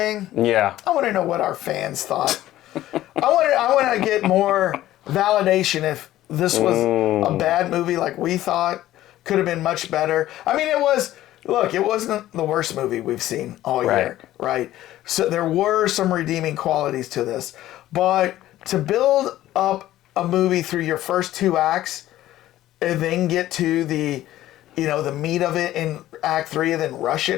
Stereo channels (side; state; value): right; quieter; 14.3 dB